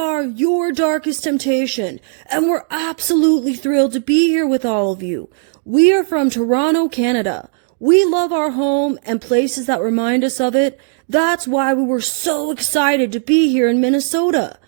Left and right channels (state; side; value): silent; left; 69 dB below the other